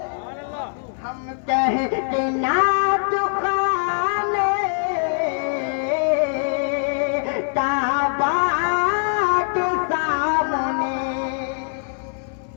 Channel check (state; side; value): silent; right; digital silence